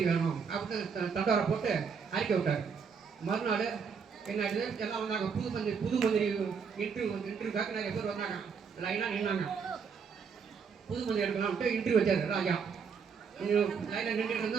வேணும் அப்படின்னு தண்டோரை போட்டு அறிக்கை விட்டார். மறுநாள் என்ன ஆயிடுது, எல்லாம் வந்தாங்க, புது மந்திரி இன்டர்வியூக்காக நிறைய பேர் வந்தாங்க, லைனாக நின்னாங்க. புது மந்திரி எடுக்கலாம்ட்டு இன்டர்வியூ வச்சாரு ராஜா. லைனில் நின்றுட்டு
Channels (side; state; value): left; quieter; 6.1 dB